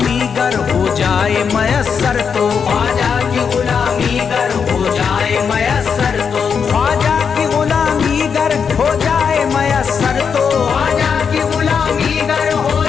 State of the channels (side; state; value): right; quieter; 6.5 dB